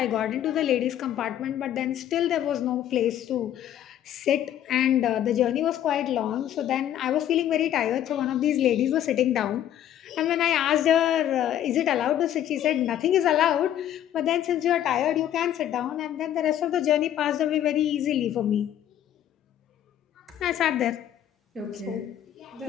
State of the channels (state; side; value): quieter; right; 11.2 dB